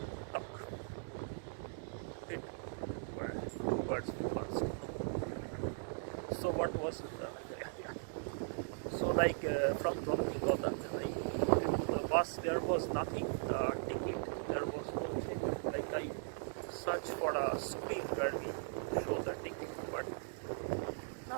talk. It were 2 birds with 1 stone. So what was it? So like from Stockholm Gothenburg, the bus, there was nothing, ticket, there was no thing. Like I searched for a screen where we show the ticket, but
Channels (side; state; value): left; silent; digital silence